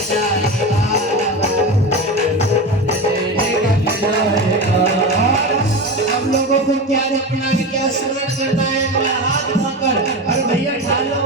जाएगा, हम लोगों को क्या रखना है, क्या स्मरण करना है, हाथ उठाकर अरे भैया ढालो,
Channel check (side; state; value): both; normal; correlation 0.24